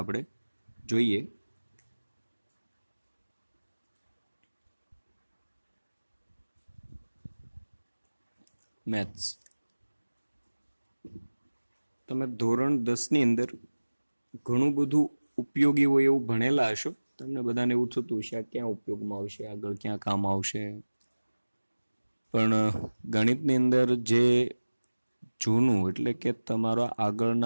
આપણે જોઈએ. મેથ્સ તમે ધોરણ 10ની અંદર ઘણું બધું ઉપયોગી હોય એવું ભણેલા હશો. તમને બધાને એવું થતું હશે આ ક્યાં ઉપયોગમાં આવશે, આગળ ક્યાં કામ આવશે. પણ ગણિતની અંદર જે જૂનું એટલે કે તમારા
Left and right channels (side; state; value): both; inverted; correlation -1.00